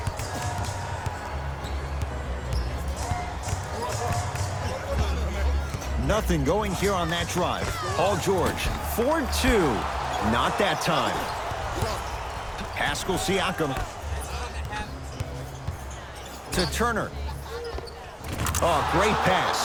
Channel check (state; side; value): identical; both; correlation 1.00